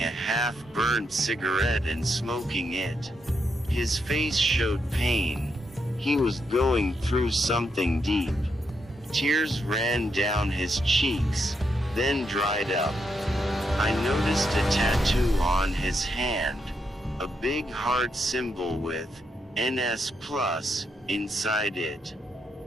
a half-burned cigarette and smoking it. His face showed pain. He was going through something deep. Tears ran down his cheeks, then dried up. I noticed a tattoo on his hand, a big heart symbol with NS Plus inside it.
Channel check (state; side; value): normal; both; correlation 0.80